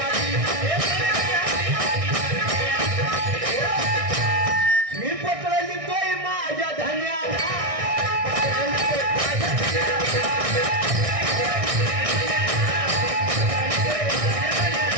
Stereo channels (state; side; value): late; left; 1.6 ms